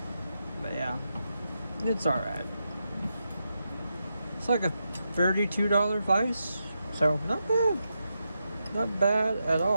But yeah, it's alright. It's like a $32 vise, so not bad. Not bad at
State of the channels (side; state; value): both; inverted; correlation -0.85